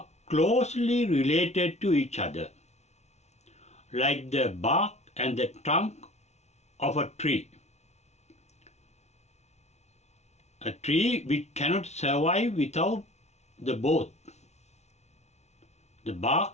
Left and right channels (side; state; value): right; late; 0.32 ms